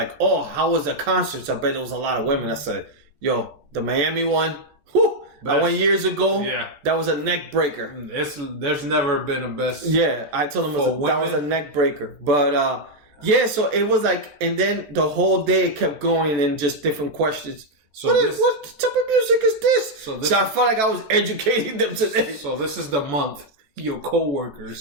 oh, how was the concert? I bet there was a lot of women. I said, yo, the Miami one, whew, I went years ago. Yeah. That was a neck breaker. There's never been a best. Yeah, I told him that was a neck breaker. But yeah, so it was like, and then the whole day it kept going and just different questions. So what type of music is this? So I felt like I was educating them today. So this is the month your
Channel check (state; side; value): late; left; 14 ms